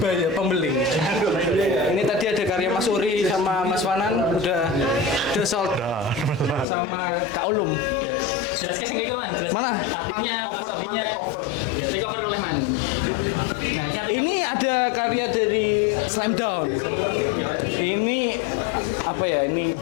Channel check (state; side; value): drops out; right; at 6.7 s